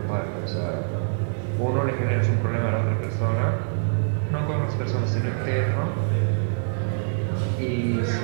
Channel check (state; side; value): silent; left; 62 dB below the other